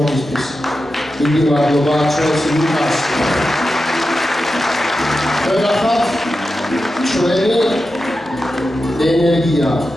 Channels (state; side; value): normal; both; correlation 0.91